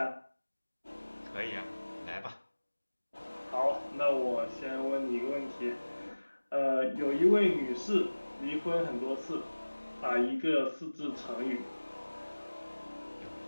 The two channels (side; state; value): both; inverted; correlation -1.00